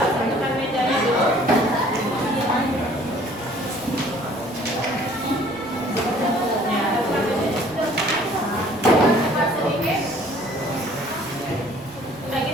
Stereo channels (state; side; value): noise; right; rumble, 24 dB below the sound